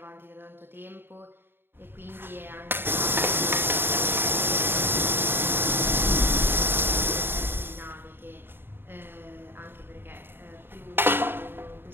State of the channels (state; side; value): late; left; 0.10 ms